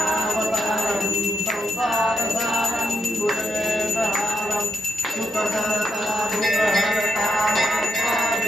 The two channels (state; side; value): normal; both; correlation 0.83